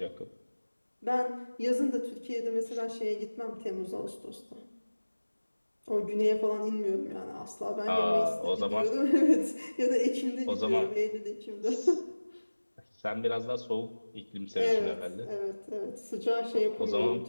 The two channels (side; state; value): both; inverted; correlation -1.00